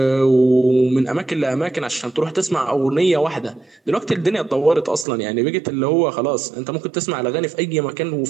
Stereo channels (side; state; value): left; drops out; at 5.1 s